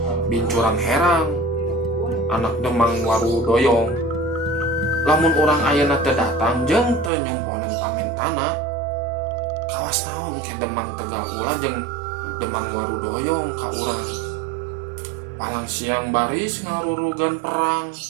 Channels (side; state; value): left; drops out; at 7.1 s